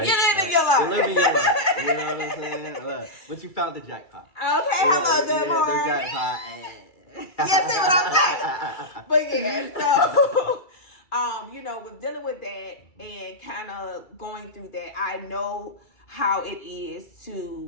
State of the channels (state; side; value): late; right; 2.3 ms